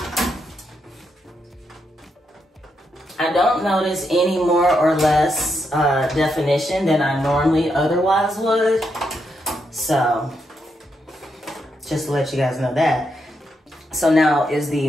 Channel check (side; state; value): both; normal; correlation 0.81